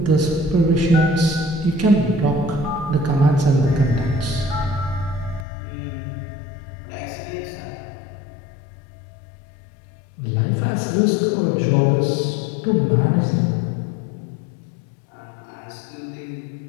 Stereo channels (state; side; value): drops out; right; at 5.5 s